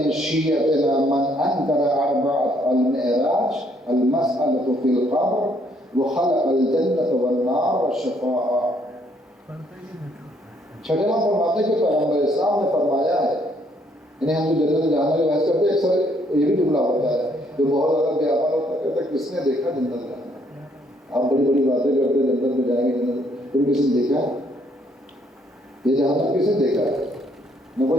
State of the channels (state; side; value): normal; both; correlation 0.68